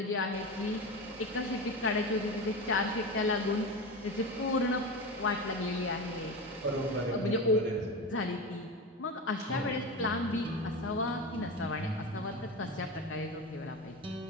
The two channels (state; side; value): normal; both; correlation 0.24